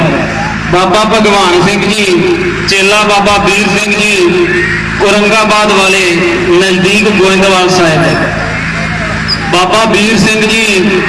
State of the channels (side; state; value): both; identical; correlation 1.00